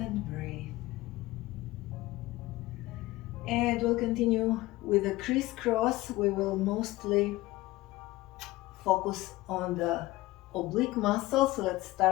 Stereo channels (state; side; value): quieter; right; 18.5 dB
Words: breathe. And we'll continue with the crisscross. We will mostly focus on the oblique muscle. So let's